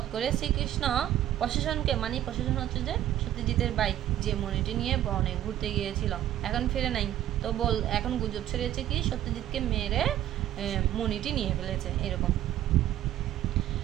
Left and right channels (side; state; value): left; quieter; 12.5 dB